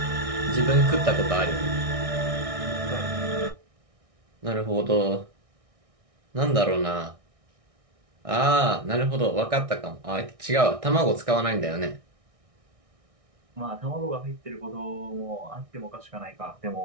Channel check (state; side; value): late; left; 1.6 ms